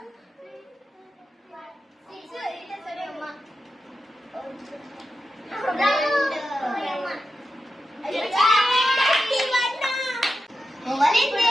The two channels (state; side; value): normal; both; correlation 0.90